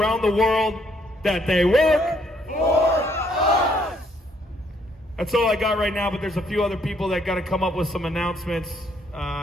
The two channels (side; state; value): both; normal; correlation 0.69